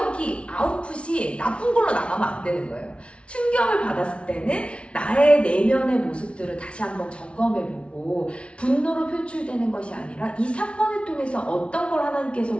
아웃풋이 나쁜 걸로 나가면 안 되는 거예요. 충격을 받았을 때는 나의 내면의 모습들을 다시 한번 점검해보고 분노로 표출되는 것이 아니라 이 사건을 통해서 어떤 걸 하나님께서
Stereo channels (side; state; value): right; late; 0.060 ms